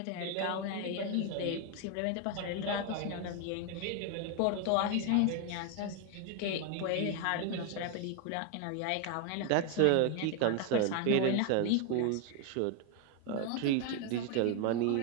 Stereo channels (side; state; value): both; different; correlation 0.01